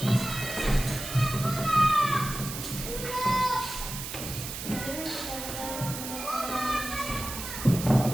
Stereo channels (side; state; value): right; noise; hiss, 8 dB below the sound